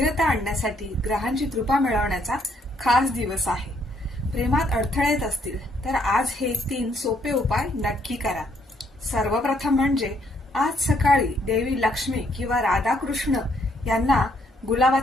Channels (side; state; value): both; normal; correlation 0.70